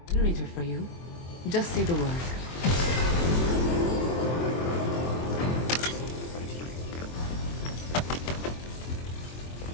generator for you. Just say the word.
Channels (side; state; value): right; late; 23 ms